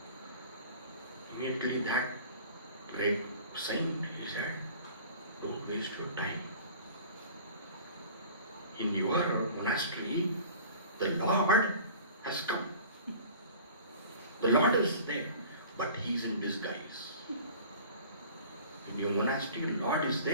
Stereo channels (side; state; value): both; inverted; correlation -0.44